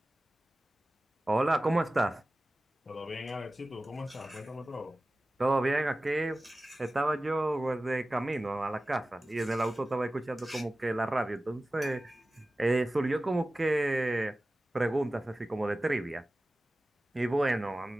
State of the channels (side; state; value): both; normal; correlation 0.96